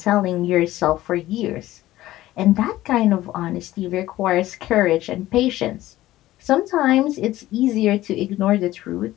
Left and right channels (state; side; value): quieter; right; 15.6 dB